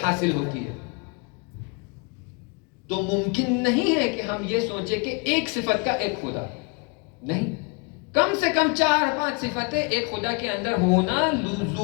حاصل ہوتی ہے۔ تو ممکن نہیں ہے کہ ہم یہ سوچیں کہ ایک صفت کا ایک خدا نہیں، کم سے کم 4-5 صفتیں ایک خدا کے اندر ہونا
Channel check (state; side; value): quieter; right; 31.9 dB